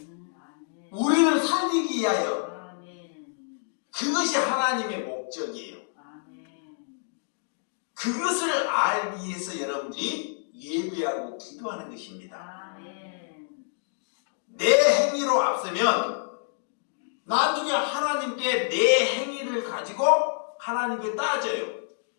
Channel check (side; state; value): right; silent; digital silence